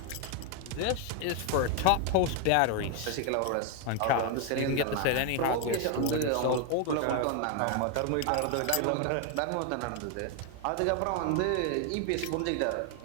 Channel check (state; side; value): different; both; correlation 0.01